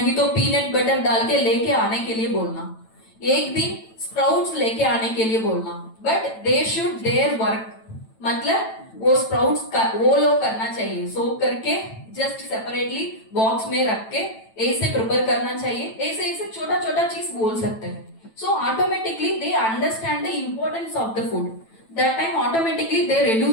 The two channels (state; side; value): late; right; 9.0 ms